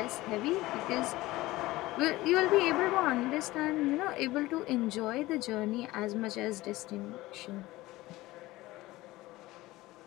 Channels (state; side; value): quieter; right; 18.5 dB